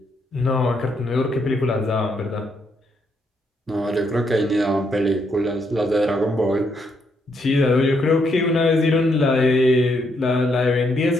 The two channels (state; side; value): normal; both; correlation 0.75